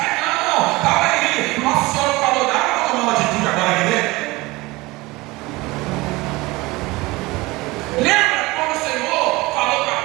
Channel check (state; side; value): quieter; left; 21.8 dB